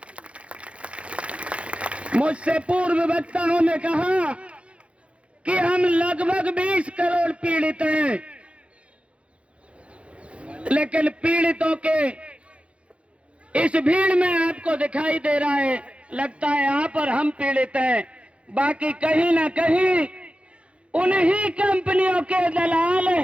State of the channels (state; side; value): late; left; 0.061 ms